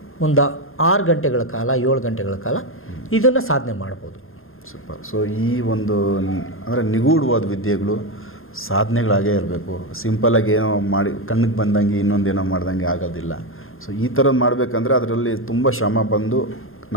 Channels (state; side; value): late; right; 0.60 ms